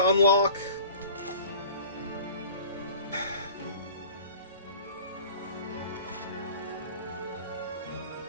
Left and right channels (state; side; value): inverted; both; correlation -0.44